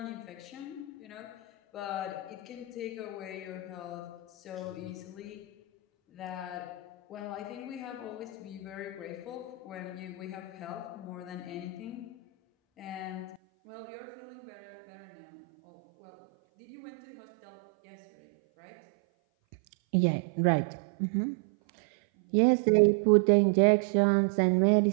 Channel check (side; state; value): left; drops out; at 13.4 s